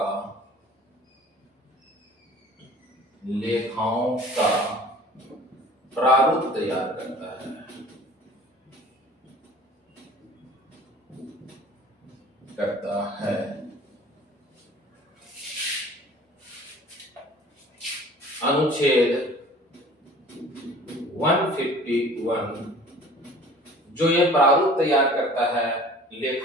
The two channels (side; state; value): both; normal; correlation 0.46